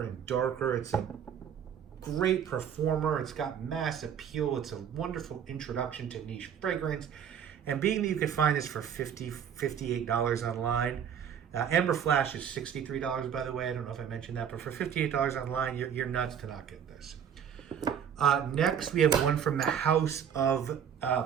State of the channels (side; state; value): left; quieter; 8.4 dB